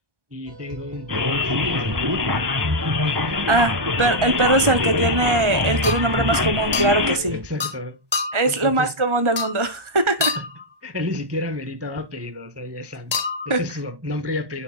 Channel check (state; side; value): late; left; 1.2 ms